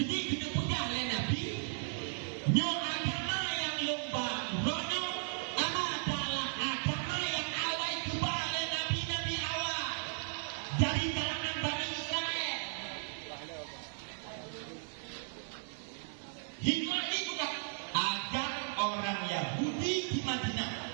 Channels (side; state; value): left; silent; digital silence